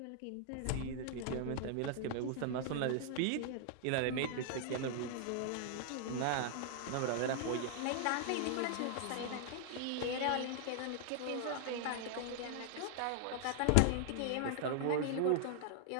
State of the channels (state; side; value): different; both; correlation 0.00